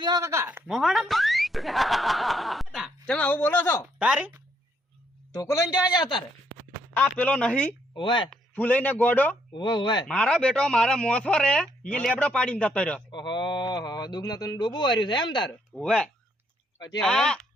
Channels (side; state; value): both; normal; correlation 0.72